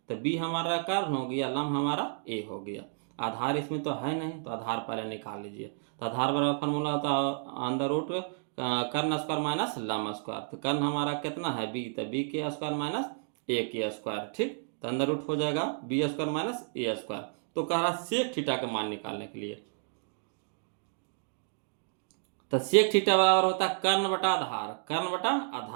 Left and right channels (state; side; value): silent; left; digital silence